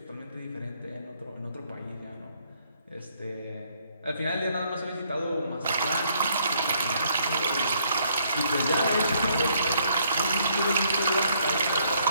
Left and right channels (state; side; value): inverted; both; correlation -0.68